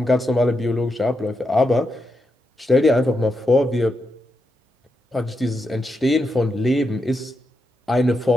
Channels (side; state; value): both; normal; correlation 0.85